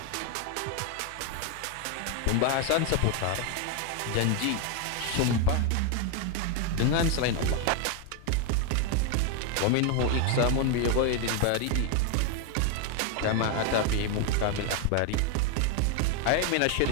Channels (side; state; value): both; different; correlation 0.01